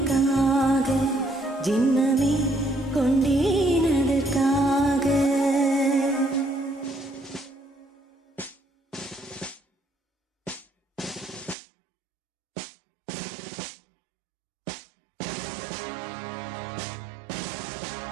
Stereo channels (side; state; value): left; drops out; at 11.6 s